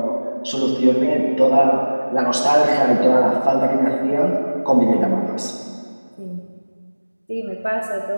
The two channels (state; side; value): inverted; both; correlation -1.00